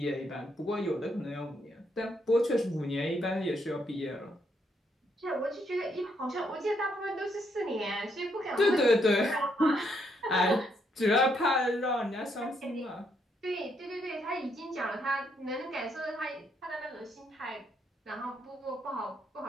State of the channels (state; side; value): normal; both; correlation 0.75